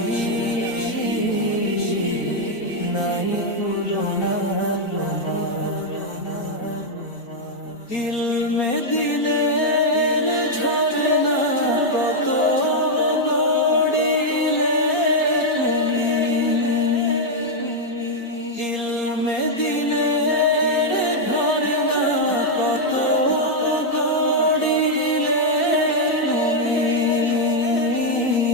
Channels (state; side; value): late; right; 4.3 ms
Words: নাই তুলনা তোমার ইলমে দিলের ঝরনা কত গড়িলে তুমি ইলমে দিলের ঝরনা কত গড়িলে তুমি